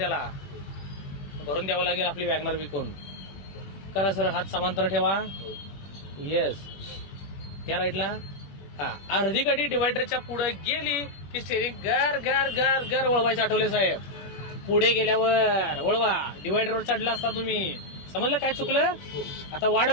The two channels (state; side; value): late; right; 21 ms